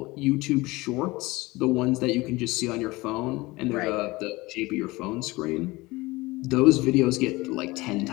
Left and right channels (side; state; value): right; quieter; 21.6 dB